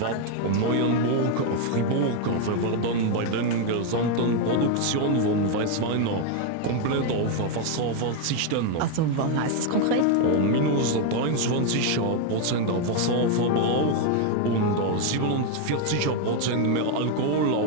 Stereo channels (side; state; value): both; different; correlation 0.01